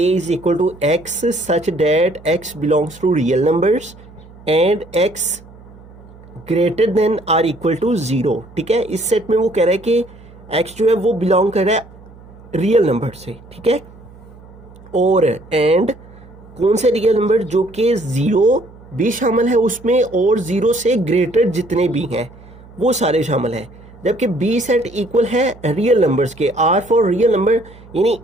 is equal to x such that x belongs to real numbers and x greater than or equal to 0। ठीक है, इस सेट में वो कह रहा है कि x जो है वो बिलोंग कर रहा है रियल नंबर से। ठीक है, और एंड कौन से रियल नंबर, जो कि 0 भी शामिल है उसमें और 0 से ग्रेटर जितने भी हैं वो सारे शामिल हैं। जबकि बी सेट इक्वल है रियल नंबर्स के, आर फॉर रियल नंबर, यानी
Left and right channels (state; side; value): noise; right; hum, 22 dB below the sound